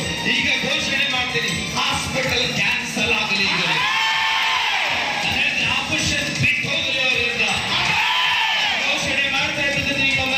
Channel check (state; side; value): identical; both; correlation 1.00